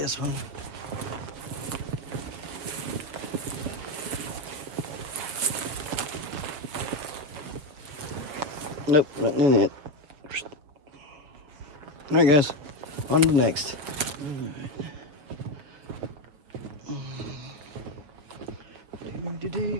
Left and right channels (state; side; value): late; left; 6.8 ms